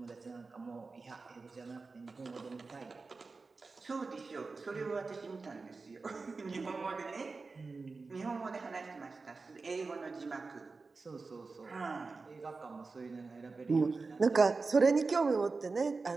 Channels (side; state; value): left; quieter; 4.1 dB